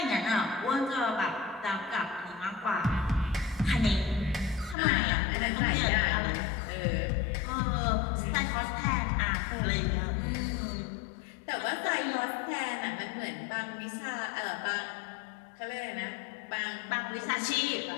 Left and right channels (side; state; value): right; drops out; at 4.8 s